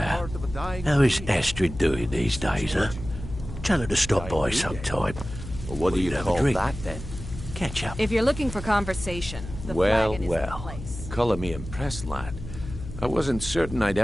how is Astrid doing these days, huh? Tell her to stop by sometime. Well, what do you have a call drink. that, then? Catch up. If you're looking for conversation, the flagon is the place. Colour me impressed, lad. I wasn't certain I'd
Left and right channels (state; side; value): noise; left; hum, 11 dB below the sound